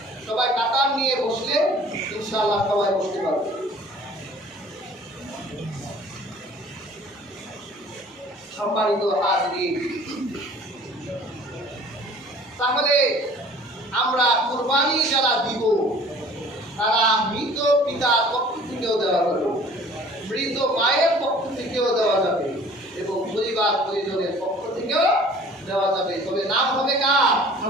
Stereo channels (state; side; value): normal; both; correlation 0.50